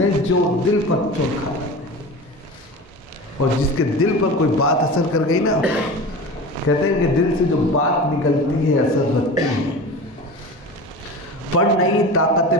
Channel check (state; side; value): normal; both; correlation 0.32